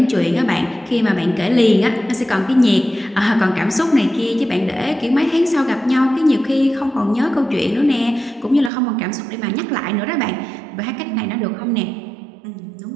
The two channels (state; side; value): drops out; left; at 8.7 s